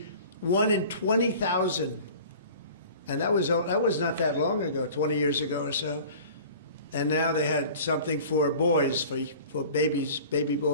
1 in 20,000. And that was not that long ago, 20 years ago or so. And now they had something for boys, for babies, baby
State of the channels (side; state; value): both; inverted; correlation -0.43